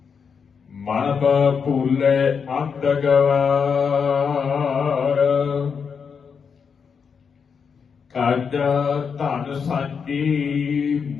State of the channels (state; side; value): quieter; right; 6.2 dB